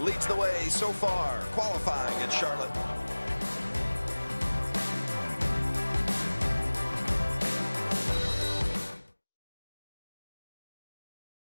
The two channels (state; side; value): inverted; both; correlation -1.00